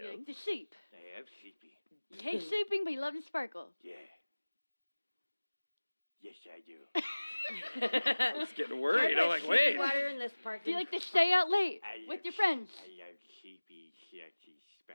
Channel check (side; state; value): both; inverted; correlation -1.00